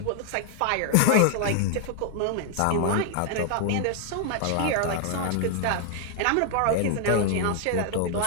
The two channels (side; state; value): both; different; correlation 0.00